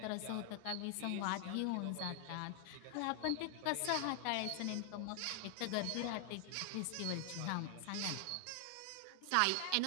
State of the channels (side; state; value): both; different; correlation 0.00